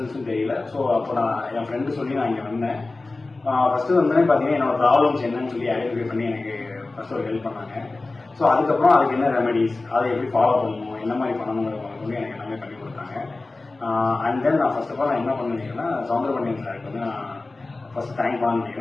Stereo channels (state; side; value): quieter; right; 3.3 dB